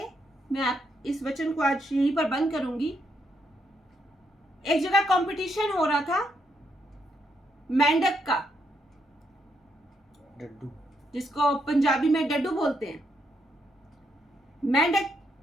मैं इस वचन को आज यहीं पर बंद करूंगी। एक जगह कंपटीशन हो रहा था मेंढक का, डड्डू। जिसको पंजाबी में डड्डू बोलते हैं, मेंढक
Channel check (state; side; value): normal; both; correlation 0.77